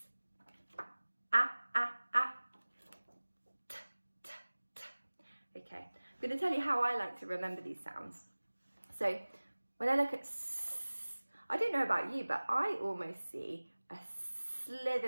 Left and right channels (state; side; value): inverted; both; correlation -1.00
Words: I'm going to tell you how I like to remember these sounds. So when I look at S, I don't know about you, but I almost see a